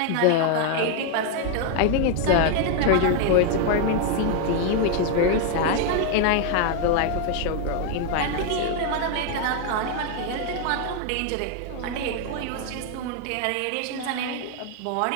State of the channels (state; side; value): different; both; correlation 0.01